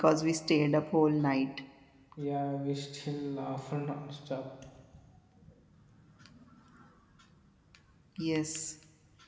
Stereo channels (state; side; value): identical; both; correlation 1.00